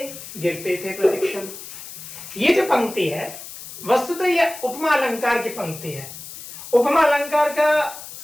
गिरते थे प्रतिक्षण। ये जो पंक्ति है वस्तुतः यह उपमा अलंकार की पंक्ति है। उपमा अलंकार का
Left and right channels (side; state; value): left; noise; hiss, 13 dB below the sound